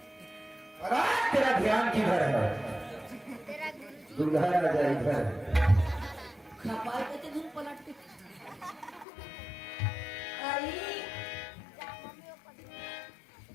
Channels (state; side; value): drops out; right; at 9.1 s